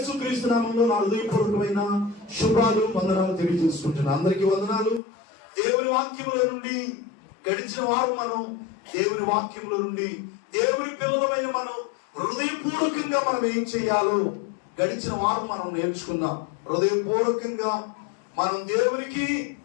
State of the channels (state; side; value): drops out; right; at 5.0 s